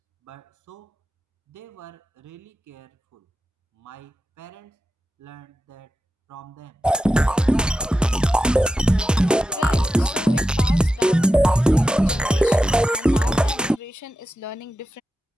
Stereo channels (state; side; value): normal; both; correlation 0.90